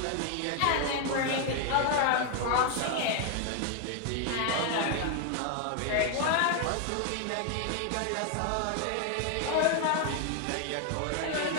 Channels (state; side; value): different; both; correlation 0.00